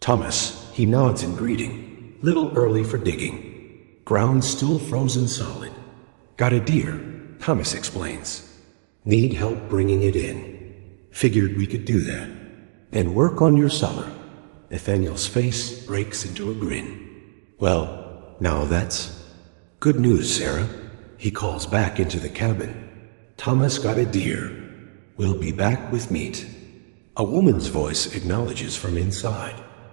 he nods in greeting, little early for digging. Ground still frozen solid. Got a deer, Thomas explains. Need help bringing it in. Figured we could do that. And work on your cellar. Nathaniel's face breaks into a grin. Well, now that's good news, Sarah. He calls back into the cabin. Thomas got a deer. We'll be back with meat. A woman's voice acknowledges from inside.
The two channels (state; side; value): silent; left; digital silence